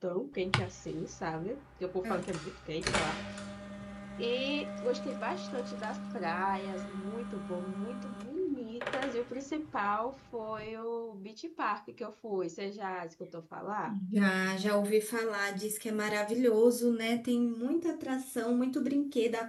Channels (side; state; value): both; identical; correlation 1.00